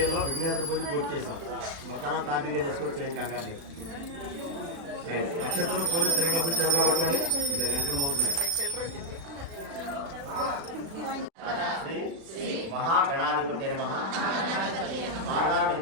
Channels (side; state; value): left; late; 36 ms